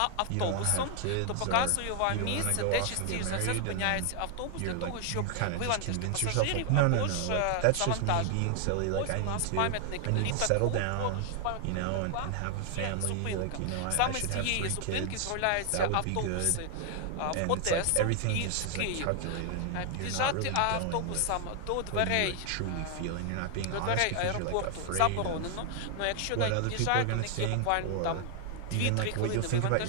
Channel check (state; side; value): different; both; correlation 0.00